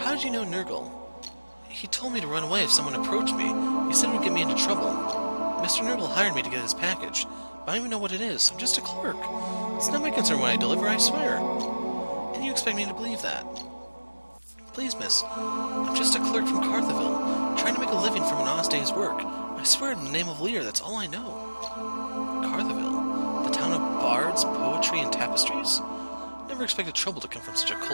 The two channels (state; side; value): inverted; both; correlation -1.00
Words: did you know Nurgle? He told me to run away if someone approached me. He said it would get me into trouble. Mr. Nurgle hired me to get his package, but I don't even know what it is. I'm just a clerk. It's not my concern when I deliver, I swear. And you expect me to believe that? Please, miss. I'm just a clerk from Cartheville, trying to make a living from an honest day's work. I swear in the name of Lear, that's all I know. Cartheville? The town of bards, poetry, and tapestries? Never expected trouble to come from such a